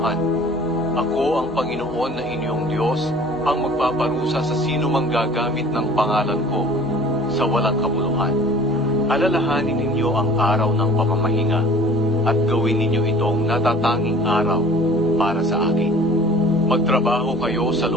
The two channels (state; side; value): normal; both; correlation 0.48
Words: Ako ang Panginoon na inyong Diyos, ang magpaparusa sa sino mang gagamit ng pangalan ko sa walang kabuluhan. Alalahanin ninyo ang araw ng pamamahinga at gawin ninyo itong natatanging araw para sa akin. Magtrabaho kayo sa